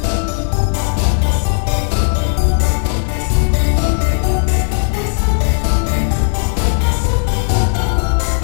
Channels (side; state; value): right; silent; 64 dB below the other